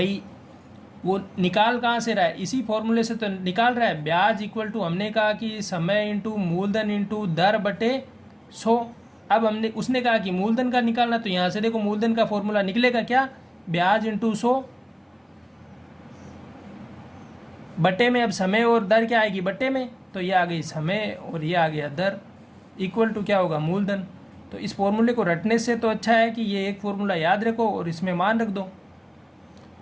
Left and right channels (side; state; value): both; identical; correlation 1.00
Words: वो निकाल कहाँ से रहा है, इसी फॉर्मूले से तो निकाल रहा है। ब्याज इक्वल टू हमने कहा कि समय इंटू मूलधन इंटू दर बटे 100। अब हमने उसने कहा कि मूलधन का निकालना, तो यहाँ से देखो मूलधन का फॉर्मूला निकलेगा क्या, ब्याज इंटू 100 बटे में, अब समय और दर क्या आएगी बटे में, तो ये आ गई समय और ये आ गया दर, इक्वल टू क्या होगा मूलधन। तो इस फॉर्मूले को रटने से तो अच्छा है कि ये एक फॉर्मूला याद रखो और इसमें मान रख दो।